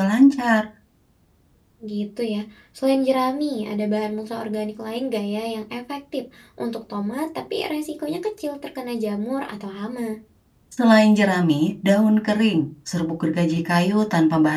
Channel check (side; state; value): both; identical; correlation 1.00